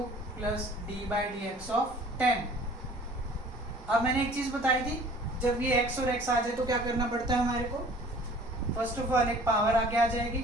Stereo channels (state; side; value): normal; both; correlation 0.50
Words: plus d by D x of 10। अब मैंने एक चीज़ बताई थी, जब ये x और x आ जाए तो क्या करना पड़ता है हमारे को, फर्स्ट ऑफ ऑल एक पावर आगे आ जाएगी,